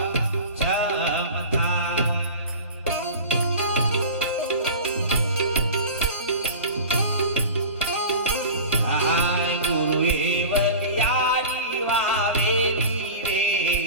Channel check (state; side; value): inverted; both; correlation -0.34